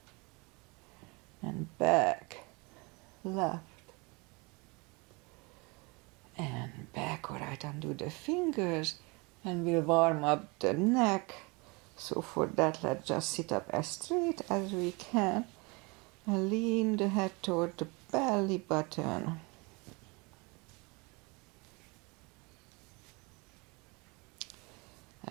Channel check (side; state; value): left; quieter; 27.9 dB